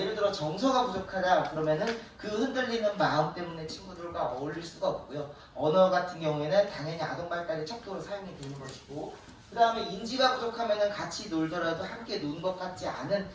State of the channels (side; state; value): both; identical; correlation 1.00